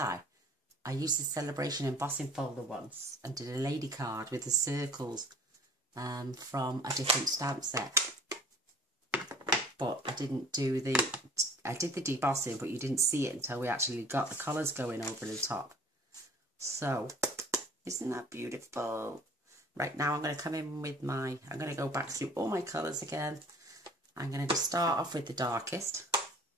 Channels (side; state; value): both; normal; correlation 0.49